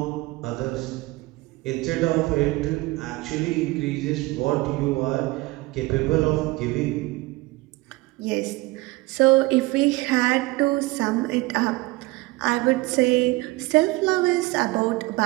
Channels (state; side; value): quieter; left; 21.7 dB